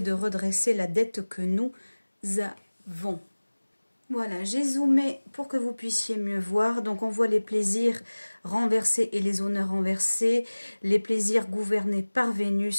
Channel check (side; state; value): both; inverted; correlation -1.00